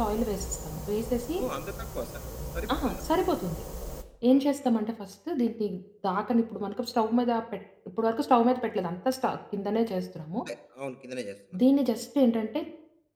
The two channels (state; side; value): identical; both; correlation 1.00